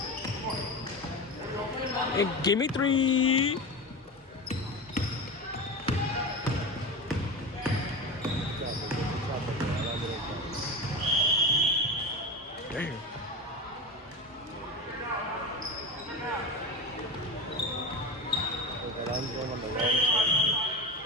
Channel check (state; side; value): normal; both; correlation 0.25